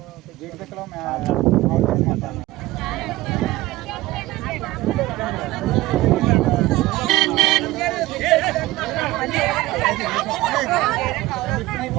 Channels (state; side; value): quieter; left; 18.0 dB